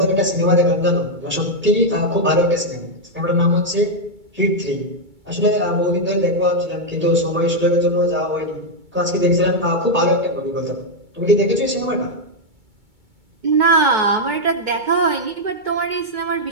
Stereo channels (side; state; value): left; late; 2.2 ms